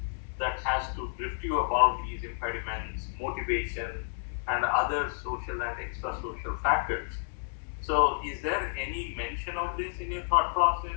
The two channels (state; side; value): silent; right; digital silence